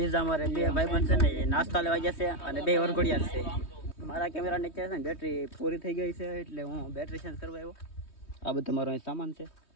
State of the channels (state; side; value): late; right; 3.2 ms